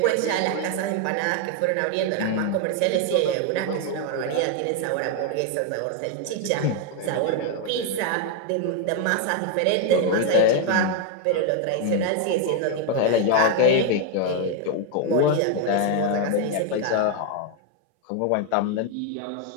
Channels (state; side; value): different; both; correlation 0.01